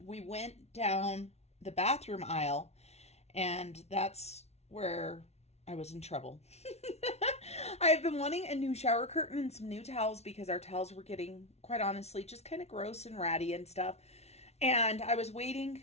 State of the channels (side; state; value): right; late; 0.31 ms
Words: We went down the bathroom aisle, and that's where I was in trouble. I've been wanting a new shower curtain and some new towels because our towels were getting, quite honestly, just kind of gross and ratty and stuff. And I was